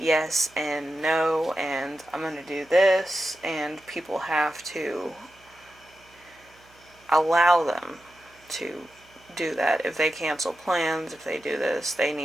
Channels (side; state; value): right; noise; hum, 29 dB below the sound